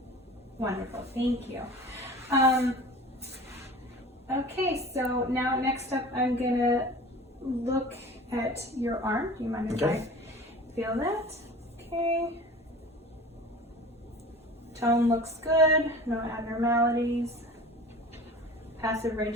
Wonderful, thank you. Okay, so now next up I'm gonna look at your arm. Do you mind if Okay. I feel that? Okay. Tone looks good, no abnormalities. Passive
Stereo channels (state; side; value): normal; both; correlation 0.39